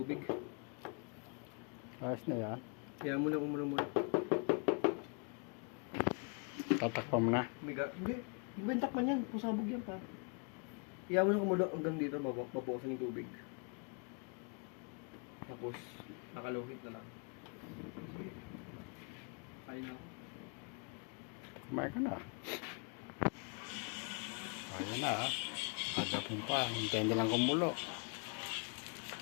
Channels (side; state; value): right; quieter; 38.2 dB